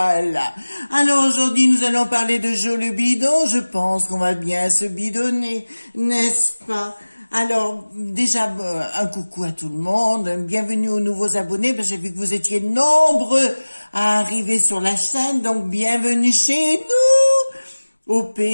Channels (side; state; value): both; inverted; correlation -1.00